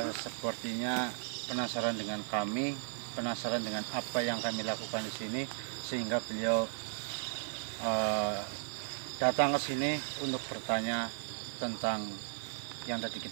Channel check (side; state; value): left; silent; 54 dB below the other